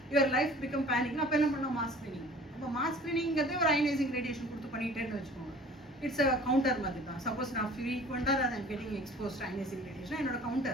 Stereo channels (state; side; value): normal; both; correlation 0.47